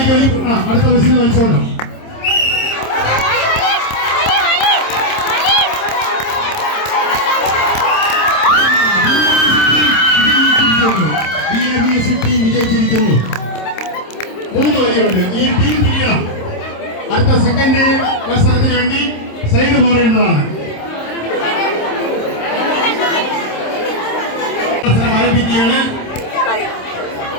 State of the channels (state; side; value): late; right; 26 ms